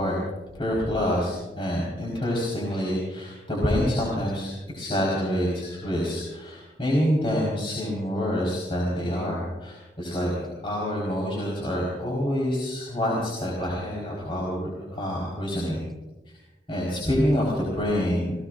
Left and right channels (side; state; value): both; normal; correlation 0.72